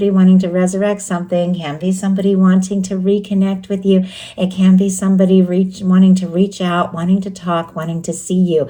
wanting to resurrect something, can be somebody wanting to reconnect with you. It can be somebody wanting to reach out, wanting to talk, wanting to see you.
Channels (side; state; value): both; identical; correlation 1.00